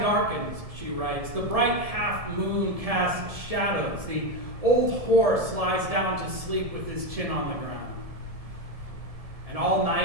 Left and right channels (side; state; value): left; late; 1.7 ms